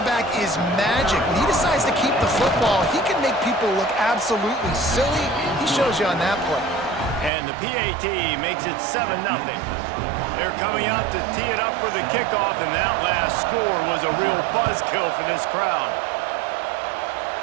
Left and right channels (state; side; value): drops out; left; at 7.3 s